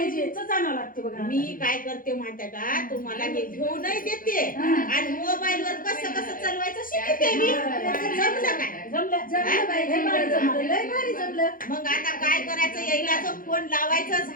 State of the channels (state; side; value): late; right; 0.40 ms